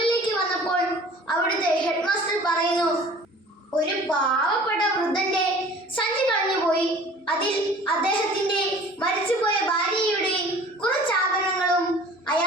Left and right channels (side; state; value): both; normal; correlation 0.47